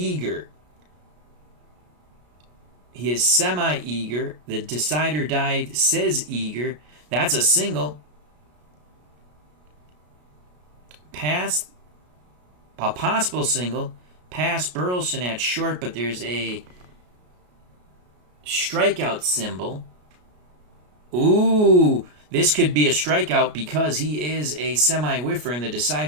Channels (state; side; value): late; left; 33 ms